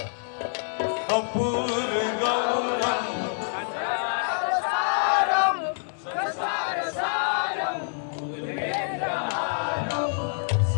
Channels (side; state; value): right; silent; digital silence